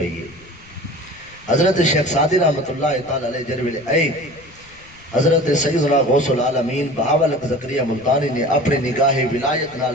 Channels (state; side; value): noise; left; rumble, 26 dB below the sound